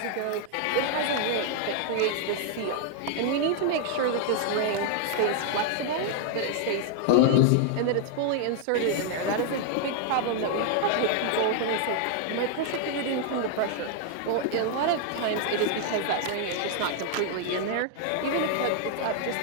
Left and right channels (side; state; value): both; different; correlation 0.00